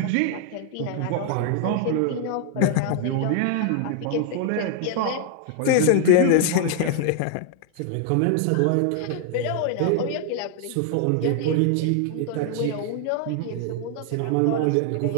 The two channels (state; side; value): different; both; correlation 0.00